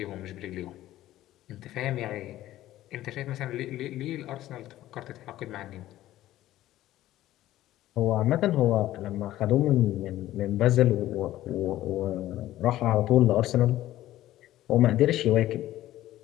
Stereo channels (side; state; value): right; quieter; 14.4 dB